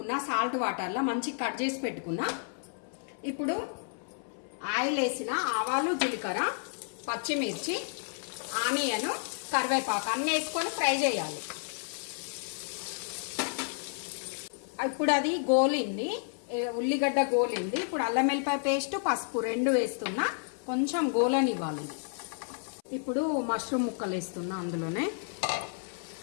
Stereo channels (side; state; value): right; silent; 57 dB below the other